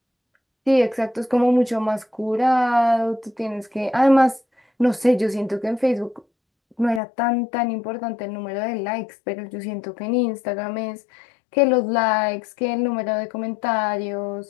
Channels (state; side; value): drops out; right; at 7.0 s